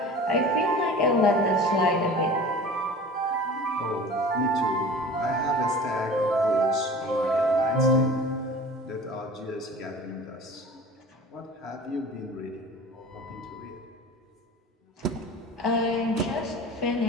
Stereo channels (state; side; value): normal; both; correlation 0.40